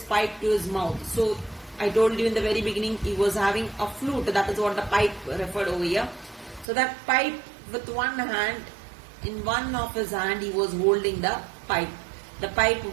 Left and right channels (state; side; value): drops out; left; at 6.7 s